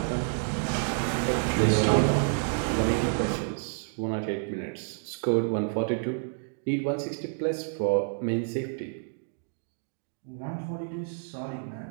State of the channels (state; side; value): silent; left; digital silence